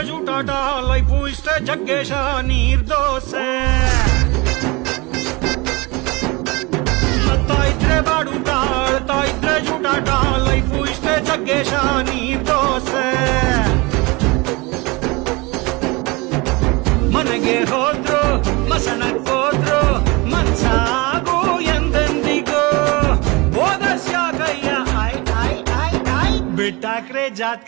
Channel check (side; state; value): left; quieter; 25.3 dB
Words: ಜೂಟಾಟ ಲೈಫು ಇಷ್ಟೇ ಜಗ್ಗೇಶ ನೀರ್ ದೋಸೆ ನಗ್ತಾ ಇದ್ರೆ ಬಾಡೂಟ ಆಡ್ತಾ ಇದ್ರೆ ಜೂಟಾಟ ಲೈಫು ಇಷ್ಟೇ ಜಗ್ಗೇಶ ನೀರ್ ದೋಸೆ ಮನೆಗೆ ಹೋದ್ರು ಮಸಣಕ್ಕೋದ್ರು ಮನ್ಸಾಗು ಎಂದೆಂದಿಗೂ ಓದಸ್ಯಾಕಯ್ಯ ಬಿಟ್ಟಾಕ್ರೆ